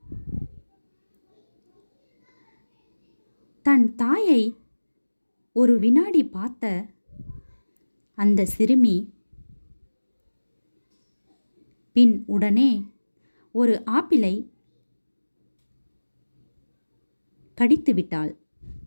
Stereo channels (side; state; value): both; inverted; correlation -1.00